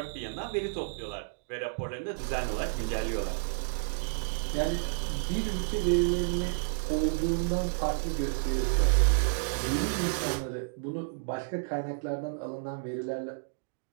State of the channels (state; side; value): silent; left; digital silence